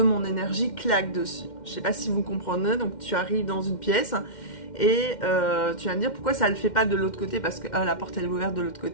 mon énergie claquent dessus. Je sais pas si vous comprenez, donc tu arrives dans une pièce, et tu vas me dire pourquoi ça ne le fait pas de l'autre côté, parce que la porte elle est ouverte de l'autre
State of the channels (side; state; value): right; late; 2.1 ms